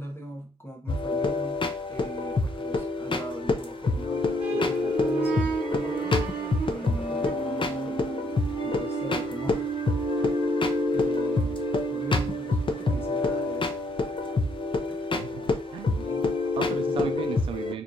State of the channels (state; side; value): normal; both; correlation 0.70